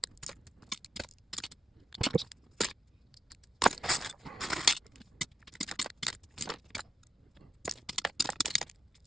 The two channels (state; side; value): normal; both; correlation 0.87